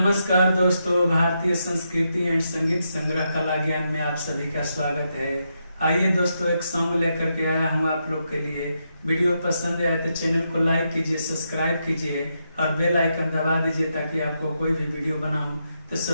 दोस्तों, भारतीय संस्कृति एंड संगीत संग्रह कला ज्ञान में आप सभी का स्वागत है। आइए दोस्तों, एक सॉन्ग लेकर के आया हूँ आप लोग के लिए। वीडियो पसंद आए तो चैनल को लाइक कीजिए, सब्सक्राइब कीजिए और बेल आइकन दबा दीजिए ताकि आपको कोई भी वीडियो बनाऊं तो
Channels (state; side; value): inverted; both; correlation -0.83